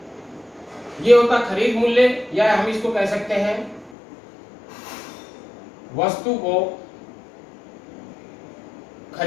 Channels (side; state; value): right; drops out; at 4.0 s